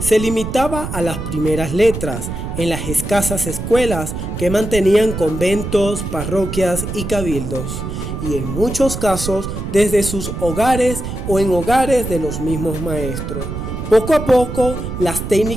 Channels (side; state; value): right; noise; rumble, 6 dB below the sound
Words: limitaba a las primeras letras en las escasas escuelas que mantenían conventos, parroquias y cabildos, y en muchos casos desde sus hogares o en hogares de los mismos maestros. Poco a poco, las